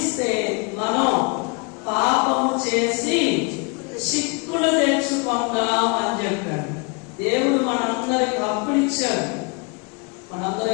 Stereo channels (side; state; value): right; quieter; 32.8 dB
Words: మనం పాపము చేసి చిక్కులు తెచ్చుకున్నాం అని చెప్పాడు. దేవుడు మనందరికి హక్కులు ఇచ్చాడు. మనందరం